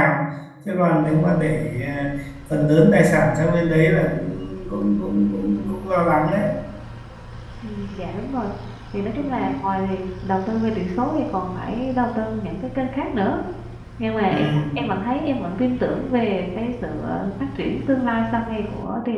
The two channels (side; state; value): both; identical; correlation 1.00